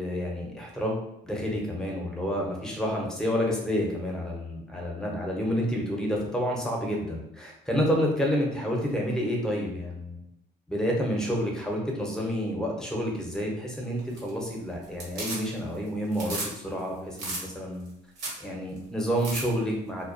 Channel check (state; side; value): normal; both; correlation 0.63